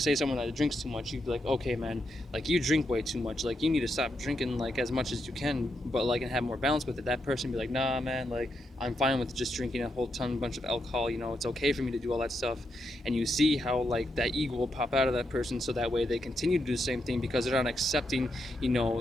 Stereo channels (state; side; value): normal; both; correlation 0.82